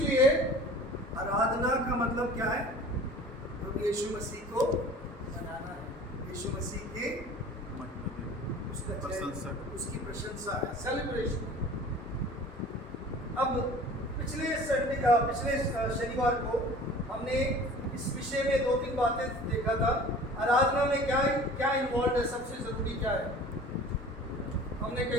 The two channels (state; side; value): normal; both; correlation 0.44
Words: आराधना का मतलब क्या है? प्रभु यीशु मसीह को मनाना है, यीशु मसीह के उसका प्रशंसा, उसकी प्रशंसा है, सेलिब्रेशन। अब पिछले शनिवार को हमने इस विषय में 2-3 बातें देखा था। आराधना में क्या क्या इन्वॉल्व है, सबसे जरूरी क्या है। हमने